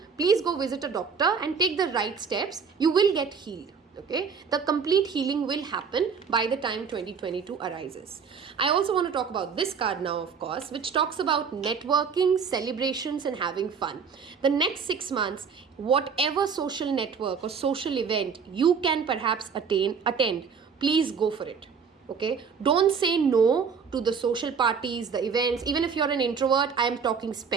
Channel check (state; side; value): quieter; left; 6.1 dB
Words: please go visit a doctor and take the right steps. You will get healed. Okay, the complete healing will happen by the time 2022 arises. I also want to talk about this card now, of course, which talks about networking, celebrations, and having fun. The next 6 months, whatever social network or social event you can perhaps attend, please go for it. Okay, don't say no to the social parties, the events. Even if you're an introvert, I am talking